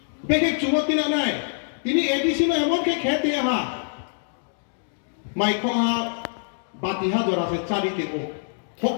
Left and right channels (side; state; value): right; silent; digital silence